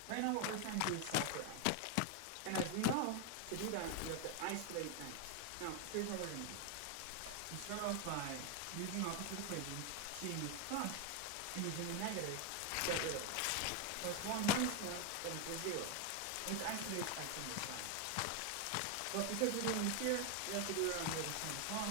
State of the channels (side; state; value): both; different; correlation 0.01